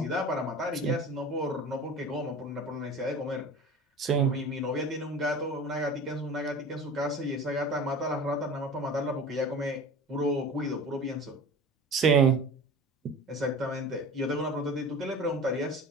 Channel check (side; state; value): both; normal; correlation 0.37